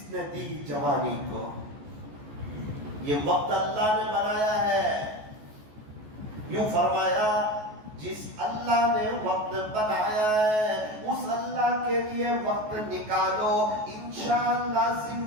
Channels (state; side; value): late; left; 14 ms